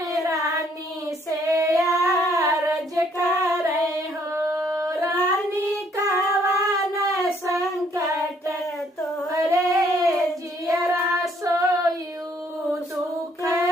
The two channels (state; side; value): normal; both; correlation 0.66